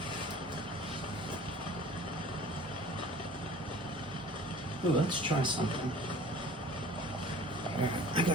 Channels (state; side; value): normal; both; correlation 0.46